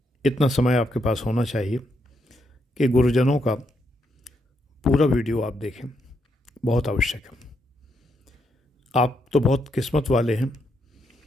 इतना समय आपके पास होना चाहिए कि गुरुजनों का पूरा वीडियो आप देखें, बहुत आवश्यक है। आप तो बहुत किस्मत वाले हैं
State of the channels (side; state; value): both; normal; correlation 0.79